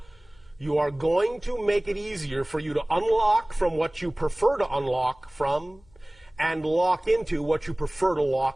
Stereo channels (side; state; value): left; noise; hum, 29 dB below the sound